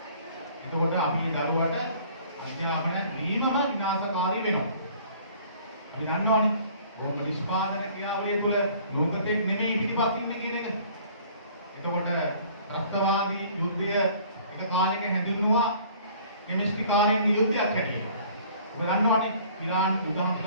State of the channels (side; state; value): both; inverted; correlation -0.53